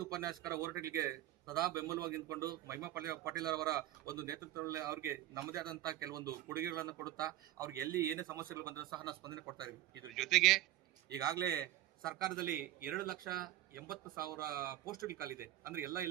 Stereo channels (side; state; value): left; quieter; 14.5 dB